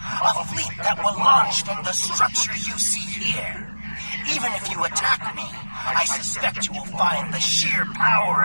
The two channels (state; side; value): inverted; both; correlation -1.00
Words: A fleet that will launch from the structure you see here. Even if you attack me, I suspect you will find the sheer power